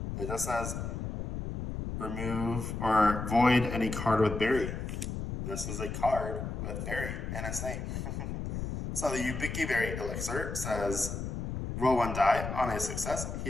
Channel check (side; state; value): left; noise; rumble, 4 dB below the sound